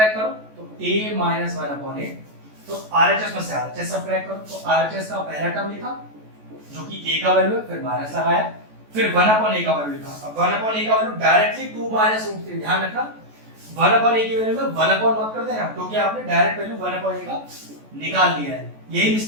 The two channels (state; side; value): late; left; 14 ms